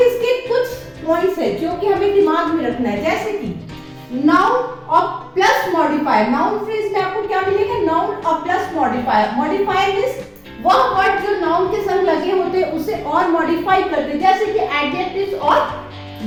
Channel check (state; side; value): identical; both; correlation 1.00